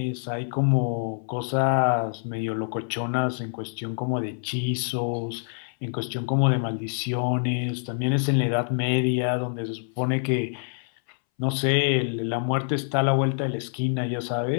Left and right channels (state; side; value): silent; right; 61 dB below the other